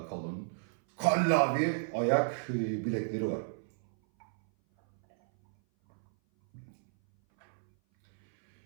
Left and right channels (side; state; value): left; silent; 56 dB below the other